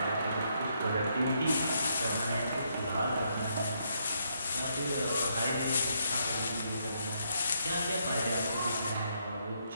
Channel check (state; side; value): inverted; both; correlation -0.75